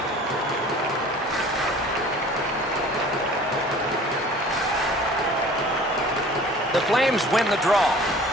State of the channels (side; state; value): both; normal; correlation 0.46